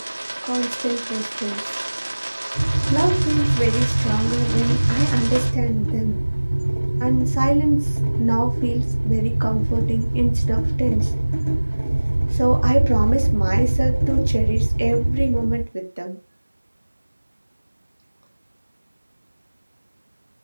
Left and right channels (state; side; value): inverted; both; correlation -1.00